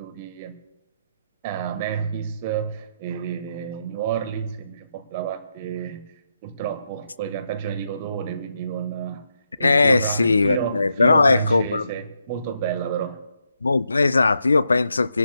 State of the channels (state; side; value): inverted; both; correlation -0.81